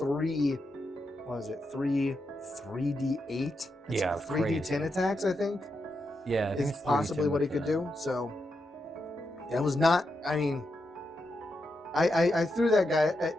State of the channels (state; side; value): normal; both; correlation 0.85